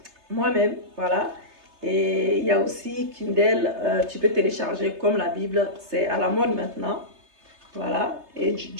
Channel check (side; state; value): left; late; 3.3 ms